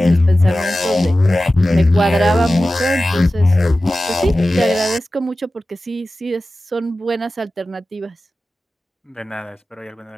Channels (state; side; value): normal; both; correlation 0.95